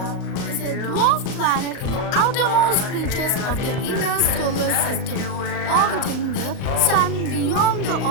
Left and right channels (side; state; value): right; late; 38 ms